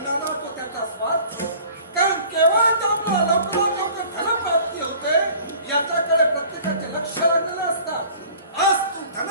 तो त्याचा स्वार्थ. कारण केव्हा त्यामुळे लवकरात लवकर धनप्राप्ती होते याच्याकडे प्रत्येकाचे लक्ष लागलेलं असतात. आज तू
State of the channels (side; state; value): both; inverted; correlation -0.48